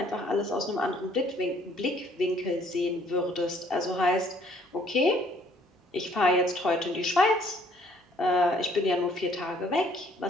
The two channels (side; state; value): both; normal; correlation 0.62